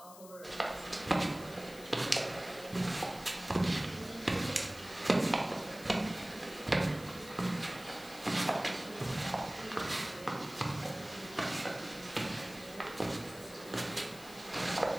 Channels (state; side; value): noise; left; hiss, 18 dB below the sound